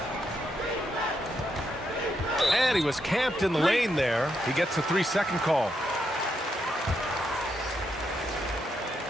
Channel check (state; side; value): normal; both; correlation 0.80